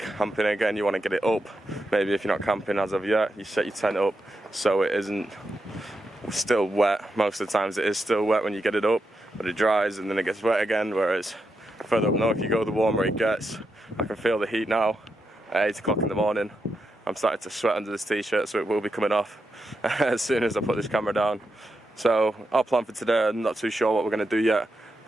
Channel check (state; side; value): normal; both; correlation 0.85